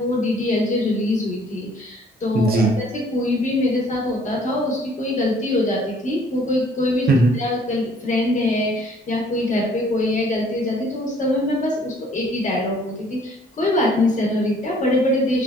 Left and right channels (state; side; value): normal; both; correlation 0.58